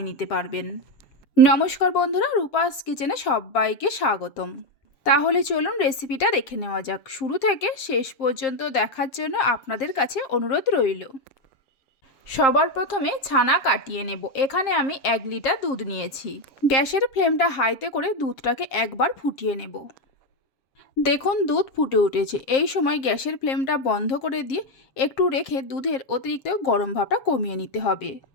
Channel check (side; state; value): right; late; 7.6 ms